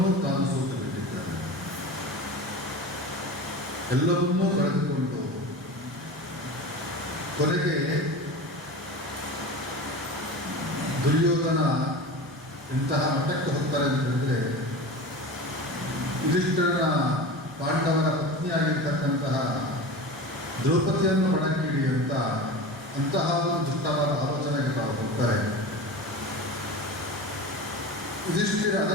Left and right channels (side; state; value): both; normal; correlation 0.31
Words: ತಾನು ಸೋತು ಬಿಟ್ಟಿದ್ದಾನೆ. ಎಲ್ಲವನ್ನೂ ಕಳೆದುಕೊಂಡು ಕೊನೆಗೆ ದುರ್ಯೋಧನ ಇಂತಹ ಮಟ್ಟಕ್ಕೆ ಹೋಗ್ತಾರೆ ಅಂತ ಹೇಳಿದ್ರೆ, ಯುಧಿಷ್ಠಿರನ ಪಾಂಡವರ ಪತ್ನಿಯಾಗಿರ್ತಕ್ಕಂತಹ ದ್ರೌಪದಿಯನ್ನು ಒಣಗಿಡಿ ಅಂತಹ ಒಂದು ದುಷ್ಟವಾದ ಆಲೋಚನೆಗೆ ತಾವು ಹೋಗ್ತಾರೆ. ಯುಧಿಷ್ಠಿರ